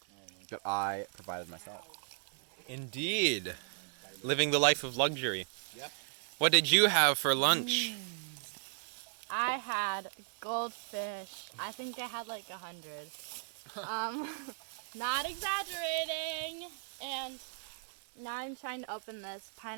that I provided myself. Indeed. Living the life of luxury. Yep. What did you have for lunch? I had goldfish. I think I had like 100. Not exaggerating. And now I'm trying to open this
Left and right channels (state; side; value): silent; left; digital silence